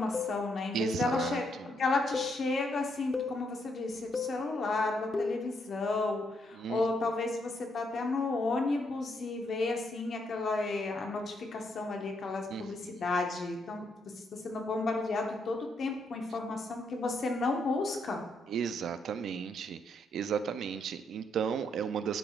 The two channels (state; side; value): normal; both; correlation 0.76